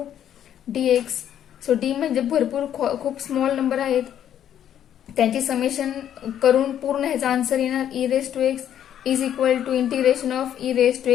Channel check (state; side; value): quieter; right; 10.2 dB